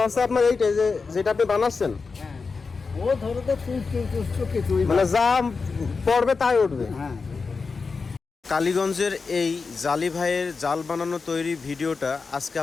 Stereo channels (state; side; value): quieter; right; 4.6 dB